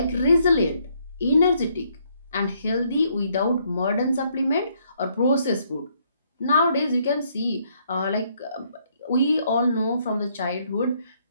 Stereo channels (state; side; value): inverted; both; correlation -0.70